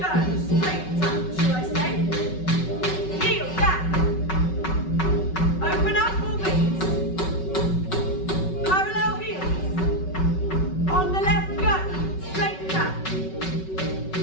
Straight tap, should I say. Heel down. Open up, ball beats. Parallel heels. On the left, go. Straight tap.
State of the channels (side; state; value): right; late; 5.3 ms